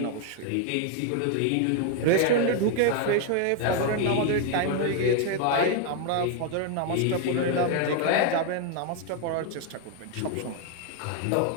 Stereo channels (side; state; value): both; different; correlation 0.01